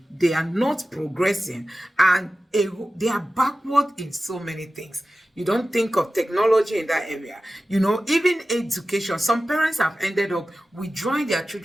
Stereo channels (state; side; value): normal; both; correlation 0.95